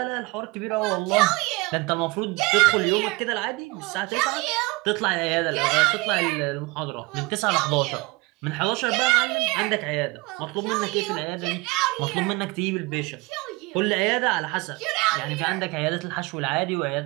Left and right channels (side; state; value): left; quieter; 23.9 dB